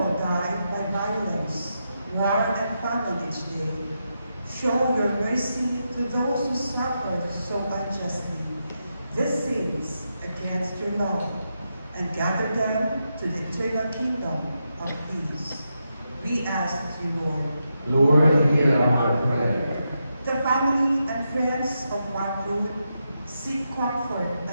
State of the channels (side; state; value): both; inverted; correlation -0.85